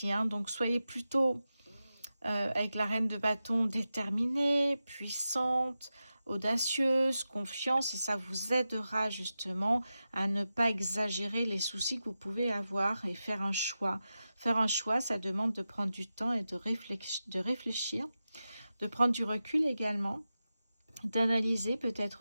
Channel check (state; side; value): inverted; both; correlation -0.92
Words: hein, donc soyez plutôt avec la reine de bâton déterminée, puissante, audacieuse, confiance, et ça vous aidera justement à ne pas exagérer les soucis que vous pouvez avoir et faire un choix. Faire un choix, ça demande de prendre du temps et de réfléchir, de prendre du recul également, d'analyser